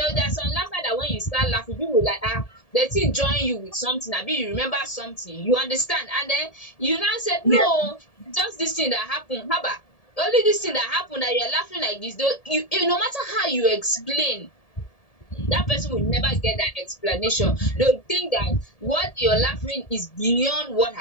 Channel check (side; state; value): right; late; 1.7 ms